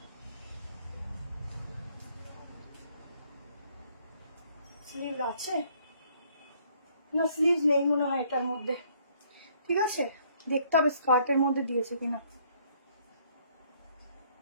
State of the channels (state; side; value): inverted; both; correlation -0.64